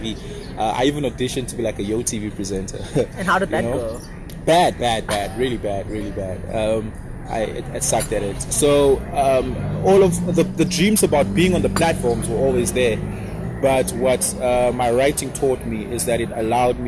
I even auditioned to be like a Yo TV presenter. And how did that go? Bad, really bad. I sucked at it. So all of the dreams about being on the platforms were always there. But what my writing taught me is that it allowed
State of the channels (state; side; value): identical; both; correlation 1.00